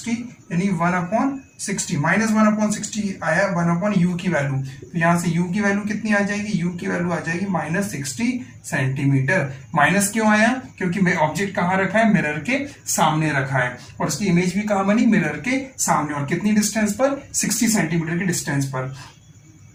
यानी 1/60 -1/60 आया 1/u की वैल्यू। तो यहाँ से u की वैल्यू कितनी आ जाएगी, u की वैल्यू आ जाएगी -60 सेंटीमीटर। माइनस क्यों आया, क्योंकि ऑब्जेक्ट कहाँ रखा है, मिरर के सामने रखा है और उसकी इमेज भी कहाँ बनी, मिरर के सामने। और कितनी डिस्टेंस पर, 60 सेंटीमीटर की डिस्टेंस पर।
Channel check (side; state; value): both; identical; correlation 1.00